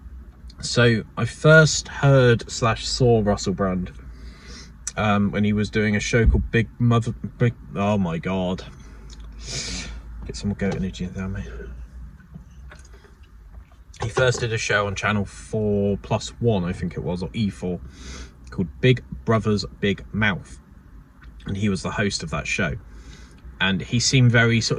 So I first heard / saw Russell Brand when he was doing a show called Big, oh my god, get some goat energy down, mate. He first did a show on channel 4+1, I think it was, or E4, called Big Brother's Big Mouth, and he was the host of that show. And he seemed very sort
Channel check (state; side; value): identical; both; correlation 1.00